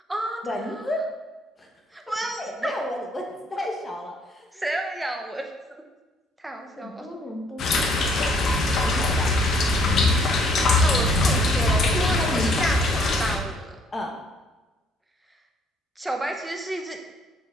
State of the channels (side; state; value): both; normal; correlation 0.63